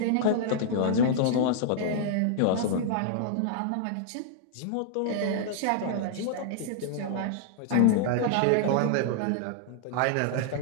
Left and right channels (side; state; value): both; different; correlation -0.01